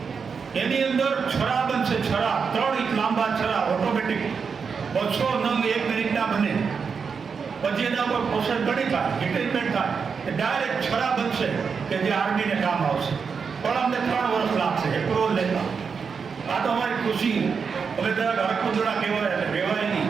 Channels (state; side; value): quieter; left; 5.8 dB